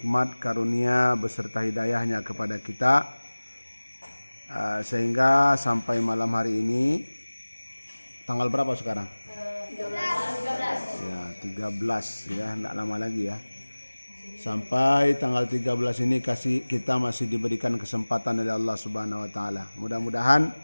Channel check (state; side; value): inverted; both; correlation -1.00